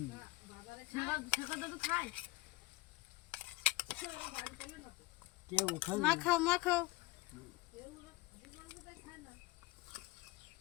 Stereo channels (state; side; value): quieter; right; 20.0 dB